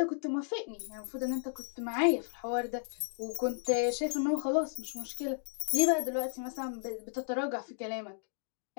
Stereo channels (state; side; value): silent; right; digital silence